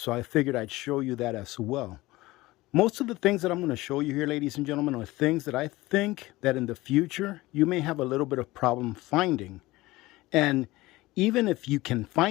I figured I'd show you that as well. Most of the things that I'm going to show you here, ladies and gentlemen, are things that I think that in the future you may have a little bit of problem finding. And even if you can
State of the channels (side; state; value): right; quieter; 19.3 dB